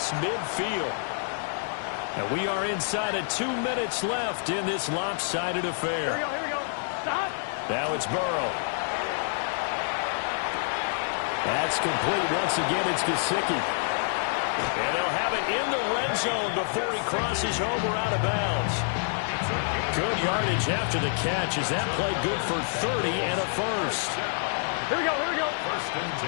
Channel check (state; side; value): silent; right; 60 dB below the other